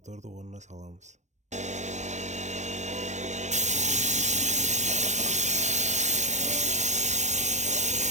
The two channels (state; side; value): late; left; 0.34 ms